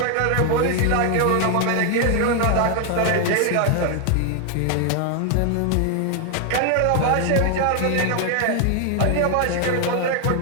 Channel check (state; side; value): different; both; correlation 0.00